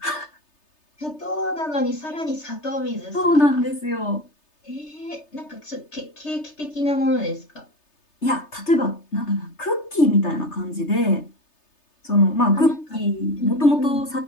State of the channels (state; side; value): late; right; 3.3 ms